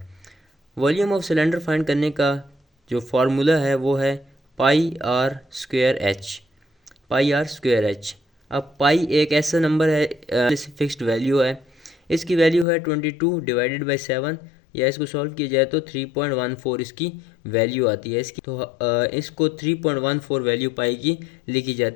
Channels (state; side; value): drops out; right; at 12.7 s